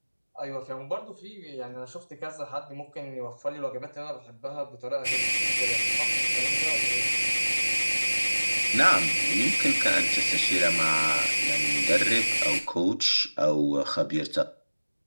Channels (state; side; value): inverted; both; correlation -1.00